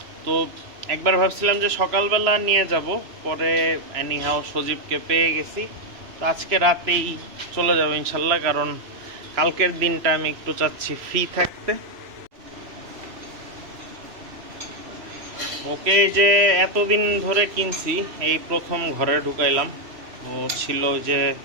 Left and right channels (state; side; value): late; left; 3.0 ms